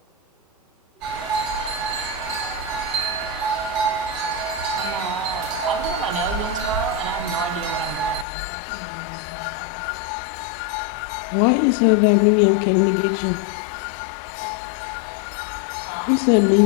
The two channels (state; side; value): drops out; right; at 8.2 s